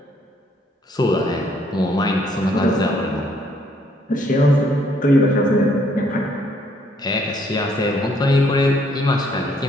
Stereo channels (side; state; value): both; normal; correlation 0.67